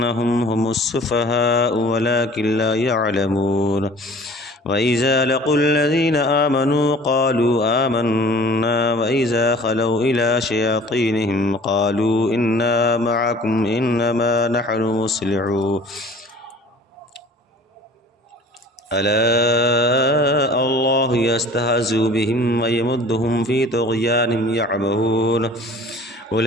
هم السفهاء ولكن لا يعلمون وإذا لقوا الذين آمنوا قالوا آمنا وإذا خلوا إلى شياطينهم قالوا إنا معكم إنما نحن مصلحون ألا الله يستهزئ بهم ويمدهم في طغيانهم يعمهون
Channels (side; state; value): both; normal; correlation 0.48